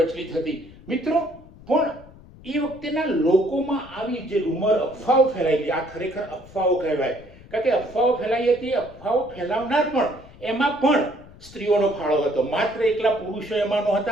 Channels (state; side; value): noise; left; rumble, 21 dB below the sound